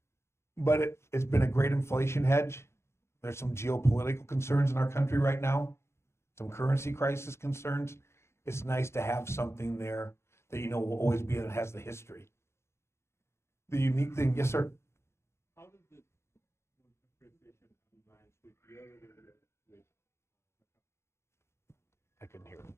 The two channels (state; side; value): late; right; 0.13 ms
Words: But it's been a great inflation hedge. There's some geopolitical concerns in our country right now, some currency crisis concerns. It's nice to have something there that you know will always be, that has the history. The unique thing, yes, sir? How does this appreciation combine with your with I couldn't hear